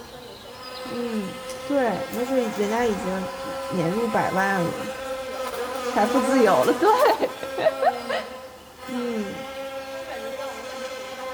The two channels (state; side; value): identical; both; correlation 1.00